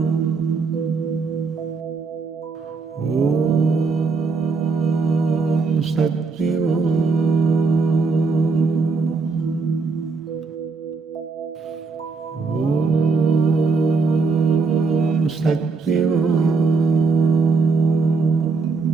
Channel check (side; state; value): left; quieter; 4.6 dB